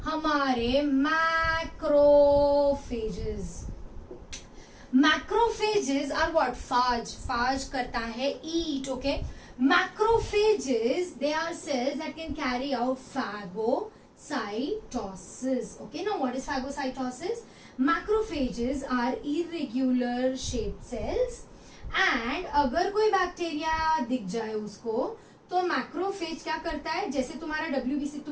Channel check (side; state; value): both; identical; correlation 1.00